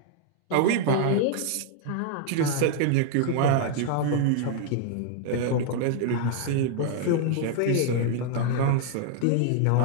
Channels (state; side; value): different; both; correlation 0.00